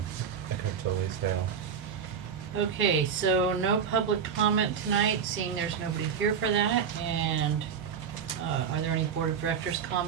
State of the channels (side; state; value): left; quieter; 7.1 dB